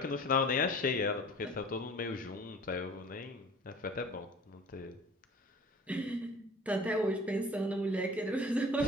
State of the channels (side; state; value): both; normal; correlation 0.44